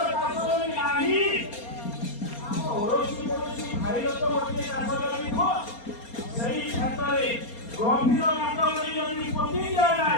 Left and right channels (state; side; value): late; right; 4.3 ms